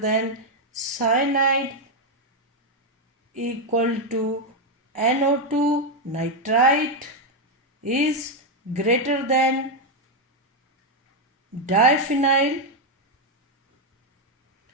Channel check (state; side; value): normal; both; correlation 0.03